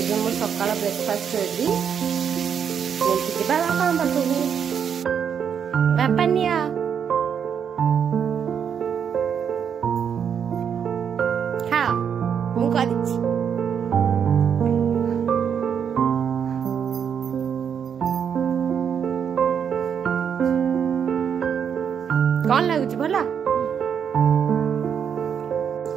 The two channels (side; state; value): left; quieter; 7.7 dB